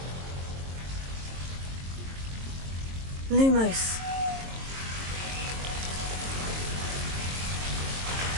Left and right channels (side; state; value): left; late; 22 ms